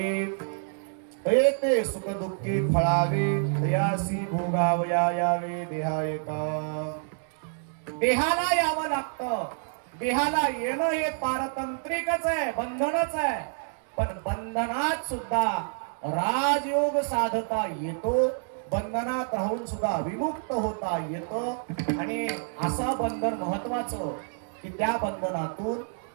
येते सुख दुःखी फळावे दयासी भोगावया यावे देहा एका. देहाला यावं लागतं. देहाला येणं हे पारतंत्रिकच आहे, बंधनच आहे. पण बंधनात सुद्धा राजयोग साधता येतो, बंधनात राहून सुद्धा विमुक्त होता येतं. आणि असा बंधन महत्वाचं की त्या बंधनातून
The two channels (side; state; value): left; silent; digital silence